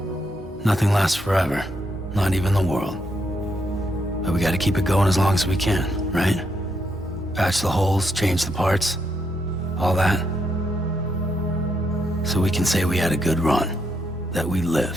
Nothing lasts forever, not even the world. But we gotta keep it going as long as we can, right? Patch the holes, change the parts, all that. So we can say we had a good run, that we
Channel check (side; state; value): left; noise; hum, 22 dB below the sound